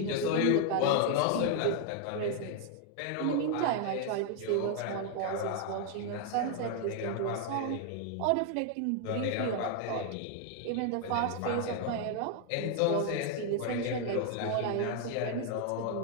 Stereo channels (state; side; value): different; both; correlation 0.00